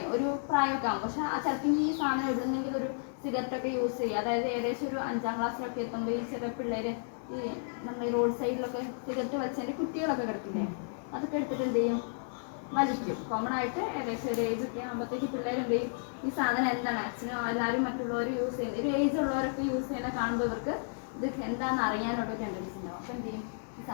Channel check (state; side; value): silent; right; 56 dB below the other